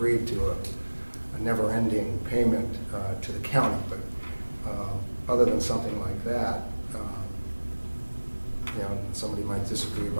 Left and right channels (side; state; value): both; inverted; correlation -1.00